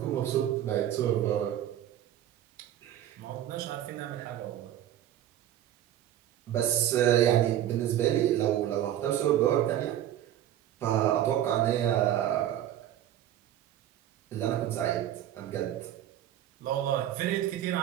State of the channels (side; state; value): left; quieter; 11.7 dB